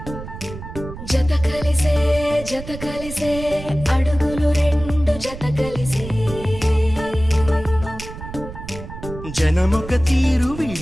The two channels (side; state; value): right; noise; rumble, 12 dB below the sound